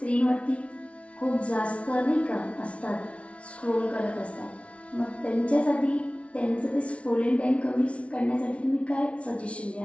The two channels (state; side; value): late; right; 0.062 ms